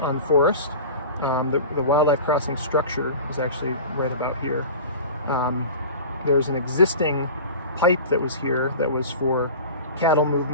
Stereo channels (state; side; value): inverted; both; correlation -0.35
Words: on Forest. The wildlife crossing structure is actually right about here. There's an existing pipe that was here that was for cattle